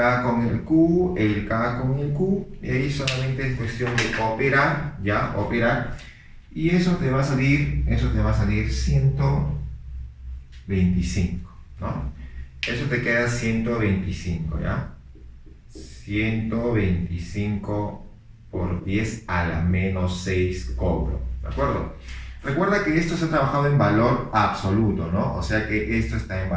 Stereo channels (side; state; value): both; identical; correlation 1.00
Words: con el Q, el K con el Q, y ahí solamente es cuestión de operar, ya, operar. Y eso te va a salir 125, ¿no? Eso te queda 125, ¿ya? 125 por 10 a la menos 6 Coulomb, ¿de acuerdo? Recuerda que esto se ha trabajado en valor absoluto, ¿no? O sea que esto está en